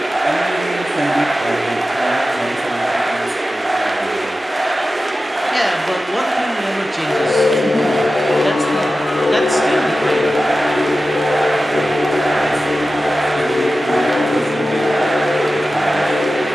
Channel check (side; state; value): both; normal; correlation 0.94